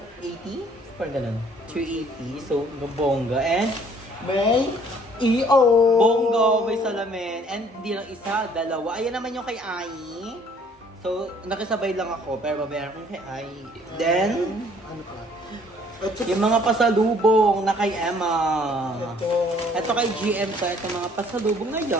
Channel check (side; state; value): both; normal; correlation 0.59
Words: Parang ganun. 380. So, bongga. And May EO. bongga, may salamin. And hindi lang isa, dalawa. Ayan naman yung kay Ai. So, nakisabay lang ako. Pero babayaran ko kay Ai. Then, Ano pa? yung mga pasalubong na kay Emma. Ito. Ito kay GM to. Ito mga pasalubong na